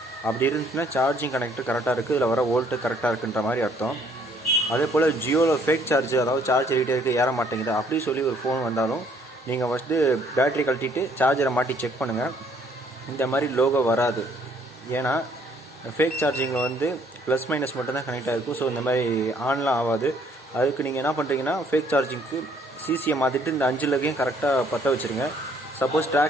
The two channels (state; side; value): normal; both; correlation 0.64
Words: அப்படி இருந்துச்சுன்னா சார்ஜிங் கனெக்டர் கரெக்டாக இருக்குது, இதில் வர வோல்ட்டு கரெக்டாக இருக்குன்ற மாதிரி அர்த்தம். அதே போல் ஜியோவில் ஃபேக் சார்ஜ், அதாவது சார்ஜ் ரீட்டருக்கு ஏற மாட்டேங்குது அப்படி சொல்லி ஒரு ஃபோன் வந்தாலும் நீங்கள் ஃபஸ்ட்டு பேட்டரி கழட்டிட்டு சார்ஜரை மாட்டி செக் பண்ணுங்கள். இந்த மாதிரி லோகோ வராது. ஏன்னா ஃபேக் சார்ஜிங்கில் வந்து ப்ளஸ் மைனஸ் மட்டும்தான் கனெக்ட் ஆகிருக்கும். ஸோ இந்த மாதிரி ஆன்லாம் ஆகாது. அதுக்கு நீங்கள் என்ன பண்ணுறீங்கன்னா ஃபேக் சார்ஜிங்க்கு சிசியை மாற்றிட்டு இந்த 5 லெக்கையும் கரெக்டாக பற்ற வச்சுருங்க. சப்போஸ்